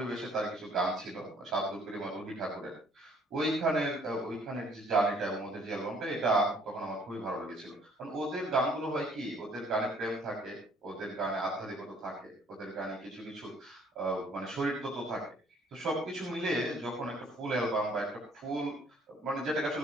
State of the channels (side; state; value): both; normal; correlation 0.61